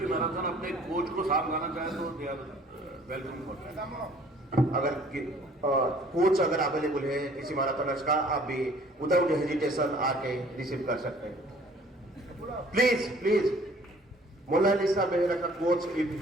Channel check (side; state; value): both; normal; correlation 0.55